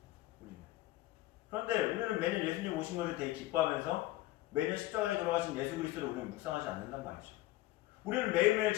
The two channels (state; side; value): quieter; right; 17.3 dB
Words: 그런데 우리는 매년 예수님 오신 것을 되게 기뻐하면서 매년 십자가에 돌아가신 예수 그리스도를 우리는 묵상하지 않는단 말이죠. 우리는 매일매일